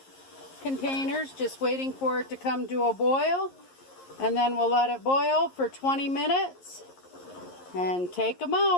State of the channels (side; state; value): right; late; 11 ms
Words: containers just waiting for it to come to a boil. And then we'll let it boil for 20 minutes and take them